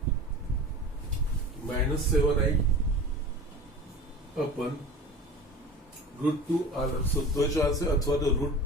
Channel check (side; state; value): both; normal; correlation 0.37